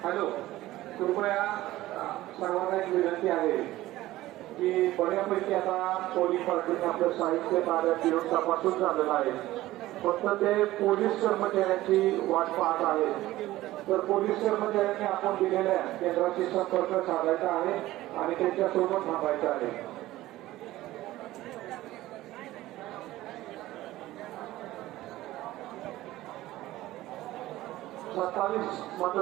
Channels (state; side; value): quieter; left; 16.3 dB